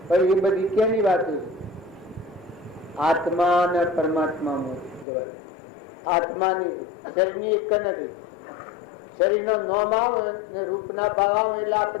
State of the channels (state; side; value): drops out; right; at 5.1 s